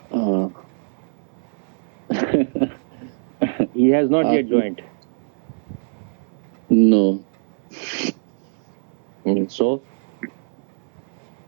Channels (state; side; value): silent; left; 61 dB below the other